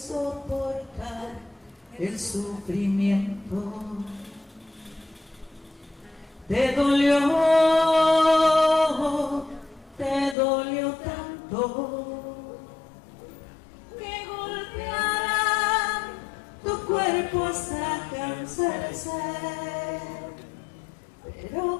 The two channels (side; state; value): right; drops out; at 10.4 s